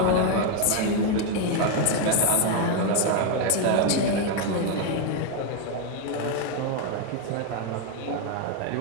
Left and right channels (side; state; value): both; different; correlation 0.01